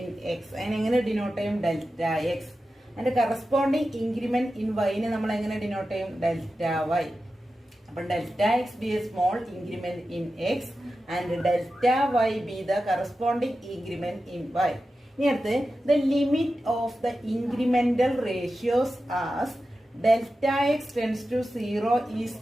x. അതിനെങ്ങനെ ഡിനോട്ട് ചെയ്യും? Delta x. അതിന്റെ കറസ്പോണ്ടിങ് ഇൻക്രിമെന്റ് ഇൻ വൈനെ നമ്മൾ എങ്ങനെ ഡിനോട്ട് ചെയ്യും? Delta y. അപ്പൊ delta x be a small increment in x and delta y be the corresponding increment in y. ഇനി അടുത്ത്, the limit of the incremental ratios as delta x tends to 0 is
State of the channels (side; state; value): both; normal; correlation 0.92